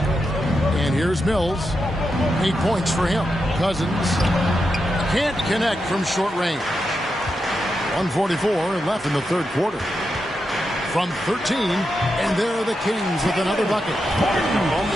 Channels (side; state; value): both; normal; correlation 0.86